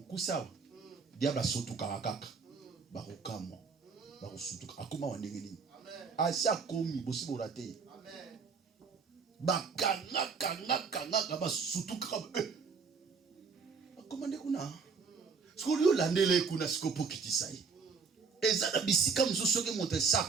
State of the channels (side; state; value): left; quieter; 5.2 dB